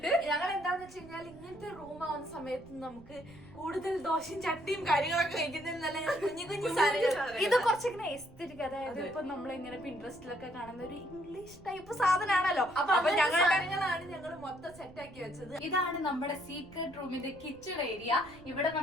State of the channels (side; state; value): right; noise; rumble, 22 dB below the sound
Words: ഞങ്ങൾ എന്താന്ന് വെച്ച് കഴിഞ്ഞാൽ ഇങ്ങനത്തെ റൂം ആവുന്ന സമയത്ത് നമുക്ക് കൂടുതൽ ദോശയും ചട്ടിയും കാര്യങ്ങളൊക്കെ കഴിക്കുന്നതിൽ നല്ല കുഞ്ഞു കുഞ്ഞു സാധനങ്ങൾ. ഇത് കുറച്ചിങ്ങനെ എസ്തെറ്റിക്, അതായത് ഇപ്പൊ നമ്മളിങ്ങനെ പിൻട്രസ്റ്റിലൊക്കെ കാണുന്ന ഒരു ഇംഗ്ലീഷ് ടൈപ്പ് സാധനമാണല്ലോ. അപ്പൊ ഞങ്ങളാണ് ഞങ്ങൾ മൊത്തം സെറ്റ് ആക്കി വെച്ചത്. ഇതാണ് നമ്മുടെ സീക്രട്ട് റൂമിന്റെ കിച്ചൺ ഏരിയ. ഇവിടെ